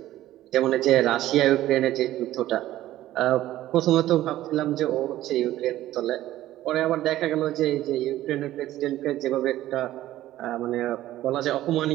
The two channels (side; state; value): left; quieter; 14.4 dB